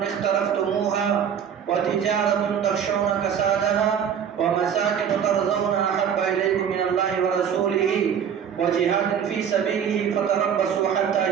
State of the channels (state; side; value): quieter; left; 8.1 dB